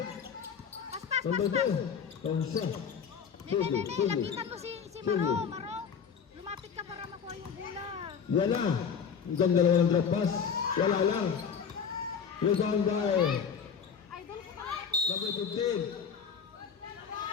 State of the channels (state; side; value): quieter; right; 6.8 dB